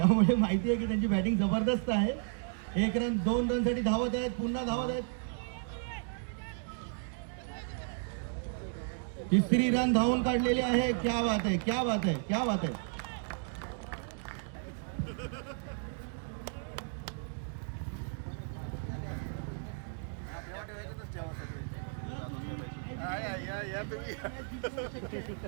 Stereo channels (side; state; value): left; silent; 55 dB below the other